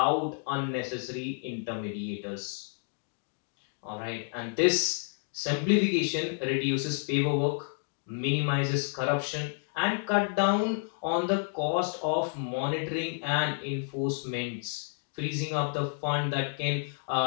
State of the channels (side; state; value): right; silent; 58 dB below the other